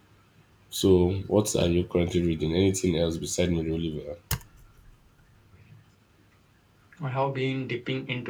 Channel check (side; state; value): both; identical; correlation 1.00